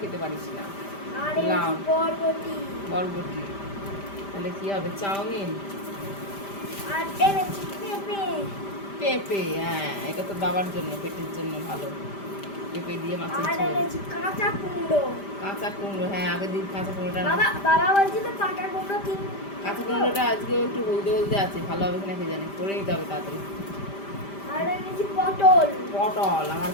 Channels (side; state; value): right; late; 5.1 ms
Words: খেতে পারিস না। আর লাউ, এনেছি বরবটি। বরবটি। তাহলে কি হবে? চাউমিন। আর এনেছি পেঁপে। পেঁপে, হ্যাঁ, এটা তো বাবার জন্য, পেটের জন্য ভালো। পেঁপে দিয়ে মাছের আর ঝোল। এনেছি কাঁচা কুমড়ো। কাঁচা কুমড়ো, হ্যাঁ, আগের দিন কাঁচা কুমড়োটা বাবা বলছিল কাঁচা কুমড়ো কাঁচা কুমড়োটা আজকেও একটু হলদে হলদে আছে, ভালো হবে কিনা কে জানে, করে নিতে হবে তাড়াতাড়ি। আর এনেছি পটল। পটল, আমার